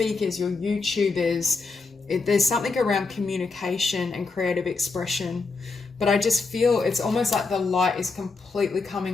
your YouTubers, there's something around communication and creative expression. But I just feel it's almost like the light is completely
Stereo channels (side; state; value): right; quieter; 4.1 dB